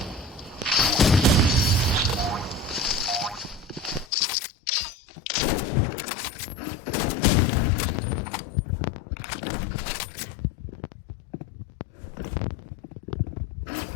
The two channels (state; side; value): drops out; right; at 4.0 s